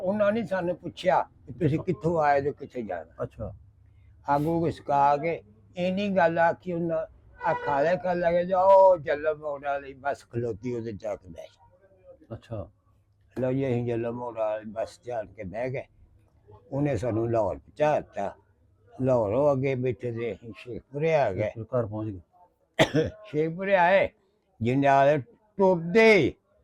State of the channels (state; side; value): identical; both; correlation 1.00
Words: ਨੇ ਸਾਨੂੰ ਪੁੱਛਿਆ ਕਿ ਤੁਸੀਂ ਕਿੱਥੋਂ ਆਏ ਤੇ ਕਿੱਥੇ ਜਾਣਾ? ਅੱਛਾ ਅੱਗ ਉਹ ਸਕਾ ਕੇ ਇੰਨੀ ਗੱਲ ਆਖੀ ਉਹਨਾਂ ਆ ਖਾਲੇ ਕਰ ਲਗੇ ਜਾਓ ਜਲਮ ਮੋੜ ਵਾਲੀ ਬੱਸ ਖਲੋਤੀ ਉਹਦੇ ਜਾ ਕੇ ਬਹਿ ਜਾ। ਅੱਛਾ ਲਓ ਜੀ ਅਸੀਂ ਜਲਮ ਮੋੜ ਵਾਲੀ ਬੱਸ ਜਾਣ ਕੇ ਬਹਿ ਗਏ। ਉਹਨੇ ਸਾਨੂੰ ਲਾਹੌਰ ਪਹੁੰਚਾ ਦਿੱਤਾ। ਲਾਹੌਰੋਂ ਅੱਗੇ ਬੈਠੇ ਦੇ ਅਸੀਂ ਸ਼ੇਖਪੁਰੇ ਆ ਗਏ। ਘਰ ਪਹੁੰਚ ਗਏ? ਸ਼ੇਖਪੁਰੇ ਆਏ, ਜੰਡਿਆਲੇ ਟੁੱਟਦੇ